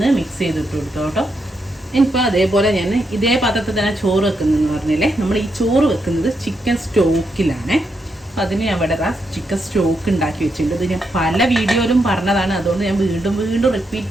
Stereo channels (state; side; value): normal; both; correlation 0.82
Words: മിക്സ് ചെയ്തിട്ട് കൊടുത്തോട്ടോ. ഇനിയിപ്പോൾ അതേപോലെ ഞാൻ ഇതേ പാത്രത്തിൽ തന്നെ ചോറ് വെക്കുന്നതെന്ന് പറഞ്ഞില്ലേ, നമ്മൾ ഈ ചോറ് വെക്കുന്നത് ചിക്കൻ സ്റ്റോക്കിലാണ്. അതിന് ഞാൻ ഇവിടെ ചിക്കൻ സ്റ്റോക്ക് ഉണ്ടാക്കി വെച്ചിട്ടുണ്ട്. ഇത് ഞാൻ പല വീഡിയോയിലും പറഞ്ഞതാണ്, അതുകൊണ്ട് ഞാൻ വീണ്ടും വീണ്ടും